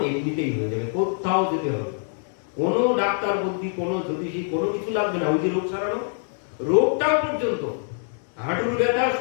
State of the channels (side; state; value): right; silent; 62 dB below the other